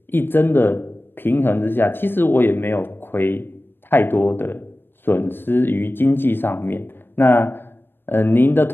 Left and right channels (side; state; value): right; late; 0.099 ms